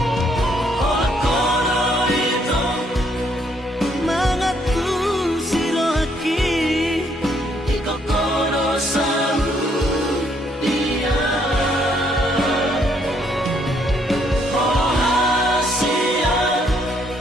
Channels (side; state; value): both; normal; correlation 0.70